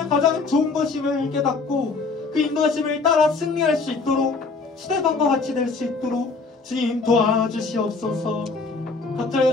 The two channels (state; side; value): quieter; right; 4.2 dB